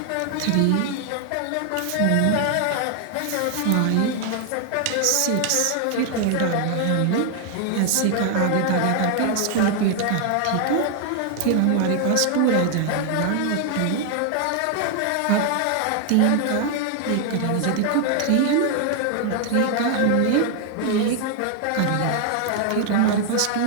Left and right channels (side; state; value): both; different; correlation 0.00